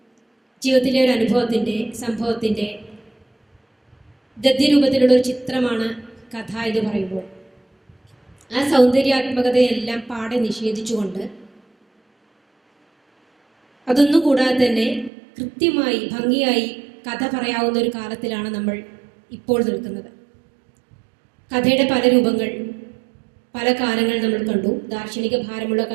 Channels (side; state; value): left; drops out; at 15.1 s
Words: ജീവിതത്തിലെ ഒരു അനുഭവത്തിൻ്റെ, സംഭവത്തിൻ്റെ ഗദ്യരൂപത്തിലുള്ള ഒരു ചിത്രമാണ് കഥ എന്ന് പറയുമ്പോൾ, ആ സൗന്ദര്യാത്മകതയെല്ലാം പാടെ നിഷേധിച്ചുകൊണ്ട്, അതൊന്നും കൂടാതെ തന്നെ കൃത്യമായി ഭംഗിയായി കഥ പറയാവുന്ന ഒരു കാലത്തിലാണ് നമ്മൾ ഇപ്പോൾ നിൽക്കുന്നത്. കഥയുടെ പല രൂപങ്ങൾ, പല കാലങ്ങൾ നമ്മൾ കണ്ടു. ദാർശനിക ഭാരമുള്ള